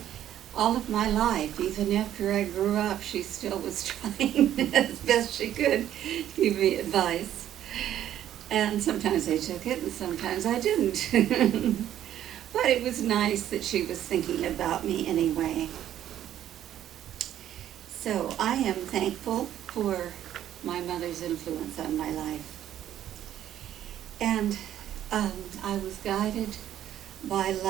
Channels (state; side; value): quieter; left; 11.4 dB